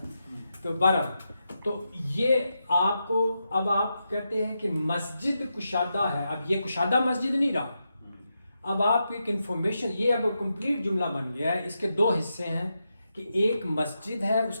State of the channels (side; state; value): both; inverted; correlation -0.86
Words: تو بہرحال تو یہ آپ کو اب آپ کہتے ہیں کہ مسجد کشادہ ہے. اب یہ کشادہ مسجد نہیں رہا. اب آپ ایک انفارمیشن یہ اب کمپلیٹ جملہ بن گیا ہے. اس کے دو حصے ہیں کہ ایک مسجد ہے اس